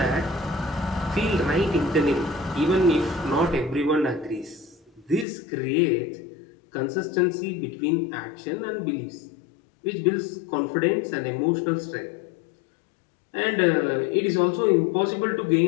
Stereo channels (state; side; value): drops out; right; at 5.2 s